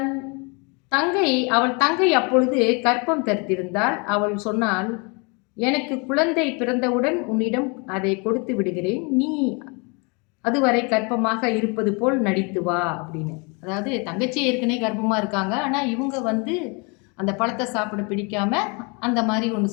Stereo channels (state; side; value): quieter; right; 31.9 dB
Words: அவள் தங்கை அப்பொழுது கர்ப்பம் தரித்திருந்தால். அவள் சொன்னால், எனக்கு குழந்தை பிறந்தவுடன் உன்னிடம் அதை கொடுத்து விடுகிறேன், நீ அதுவரை கர்ப்பமாக இருப்பது போல் நடித்து வா அப்படின்னு. அதாவது தங்கச்சி ஏற்கனவே கர்ப்பமாக இருக்காங்க, ஆனால் இவங்க அந்த பழத்தை சாப்பிட பிடிக்காம அந்த மாதிரி